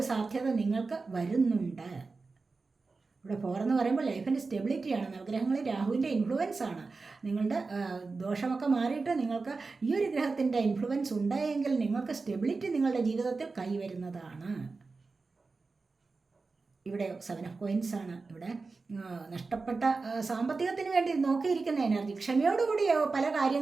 സാധ്യത നിങ്ങൾക്ക് വരുന്നുണ്ട്. ഇവിടെ 4 എന്ന് പറയുമ്പോൾ ലൈഫിൻ്റെ സ്റ്റെബിലിറ്റിയാണ്. നവഗ്രഹങ്ങളിൽ രാഹുവിൻ്റെ ഇൻഫ്ലുവൻസ് ആണ്. നിങ്ങളുടെ ദോഷമൊക്കെ മാറിയിട്ട് നിങ്ങൾക്ക് ഈ ഒരു ഗ്രഹത്തിൻ്റെ ഇൻഫ്ലുവൻസ് ഉണ്ടായെങ്കിൽ നിങ്ങൾക്ക് സ്റ്റെബിലിറ്റി നിങ്ങളുടെ ജീവിതത്തിൽ കൈവരുന്നതാണ്. ഇവിടെ 7 ഓഫ് കോയിൻസ് ആണ്. ഇവിടെ നഷ്ടപ്പെട്ട സാമ്പത്തികത്തിന് വേണ്ടി നോക്കിയിരിക്കുന്ന എനർജി, ക്ഷമയോടുകൂടി പല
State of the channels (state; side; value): quieter; left; 4.1 dB